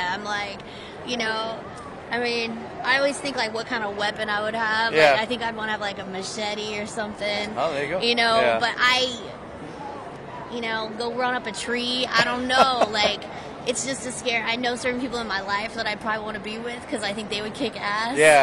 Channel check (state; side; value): identical; both; correlation 1.00